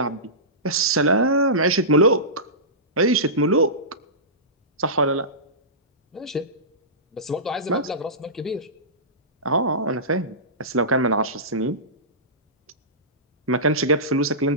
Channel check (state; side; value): normal; both; correlation -0.19